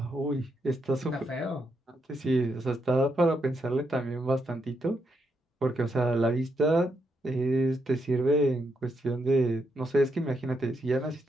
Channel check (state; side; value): normal; both; correlation 0.80